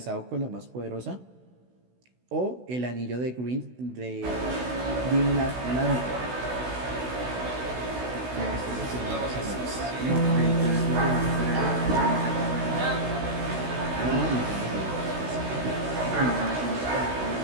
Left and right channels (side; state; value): left; late; 16 ms